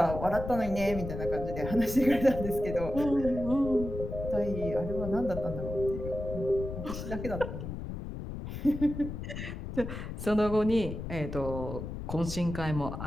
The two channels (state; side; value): noise; left; rumble, 7 dB below the sound